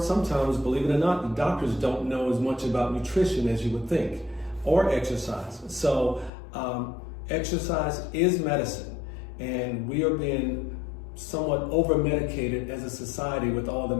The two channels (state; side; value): drops out; right; at 6.3 s